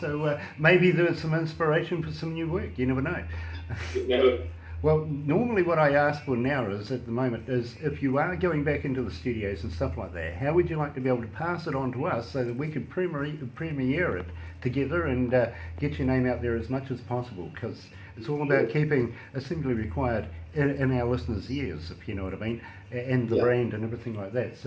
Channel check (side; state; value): both; identical; correlation 1.00